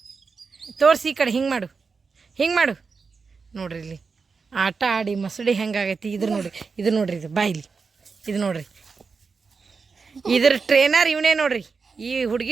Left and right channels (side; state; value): left; quieter; 4.9 dB